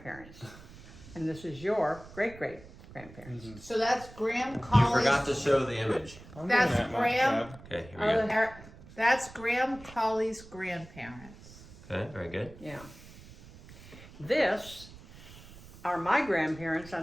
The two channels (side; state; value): right; noise; rumble, 19 dB below the sound